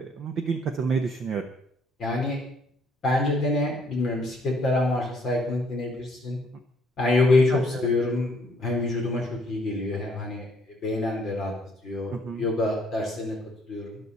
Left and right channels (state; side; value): normal; both; correlation 0.65